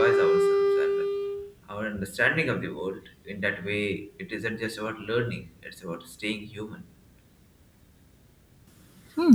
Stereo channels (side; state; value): both; identical; correlation 1.00